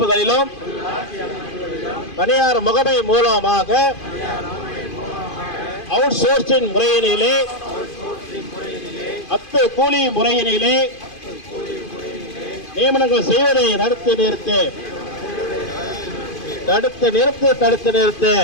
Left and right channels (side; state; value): right; late; 2.5 ms